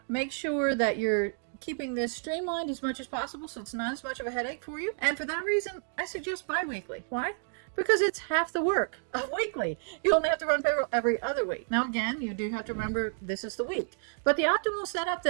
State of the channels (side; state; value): left; silent; digital silence